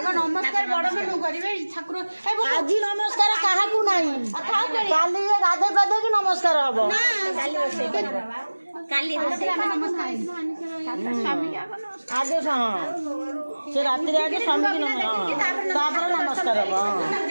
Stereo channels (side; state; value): both; inverted; correlation -1.00